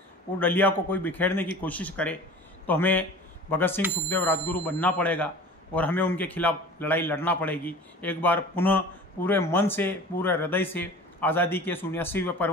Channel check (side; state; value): both; normal; correlation 0.40